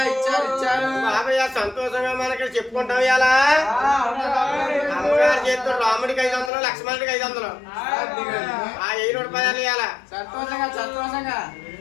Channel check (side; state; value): right; drops out; at 6.5 s